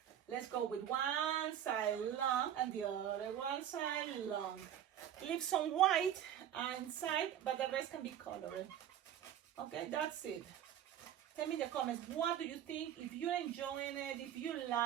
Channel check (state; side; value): quieter; left; 10.4 dB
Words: let's go with one side long and the other one side long. Leave some white inside, but the rest can be colored. Okay, that's it. Tell me in the comments, what do you think? If you're enjoying it, if you